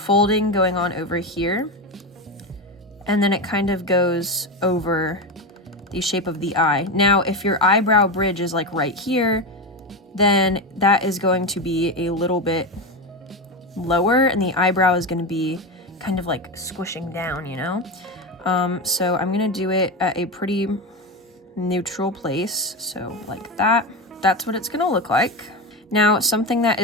going on over here, and then it kind of goes over the shape of the eye. Now, if your eyebrow bridge is like right here, then that is going to be a little bit lower and the eyebrow is going to be kind of like squishing down, you know? So I'm going to do it at a pretty neutral place. So like that. That's what it's going to look like. Now, something that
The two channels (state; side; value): normal; both; correlation 0.17